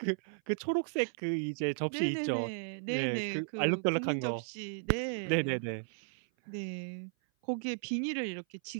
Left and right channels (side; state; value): left; silent; 55 dB below the other